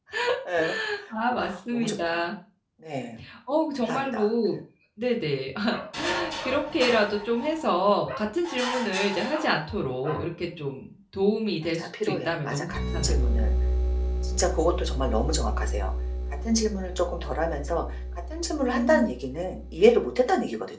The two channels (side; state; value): both; identical; correlation 1.00